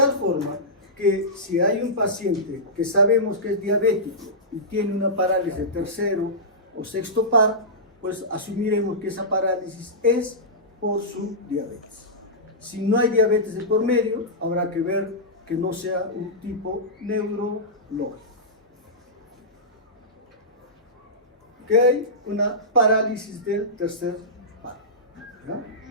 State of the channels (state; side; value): normal; both; correlation -0.15